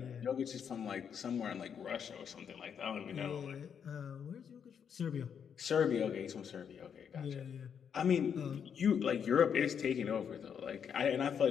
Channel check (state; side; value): quieter; right; 7.6 dB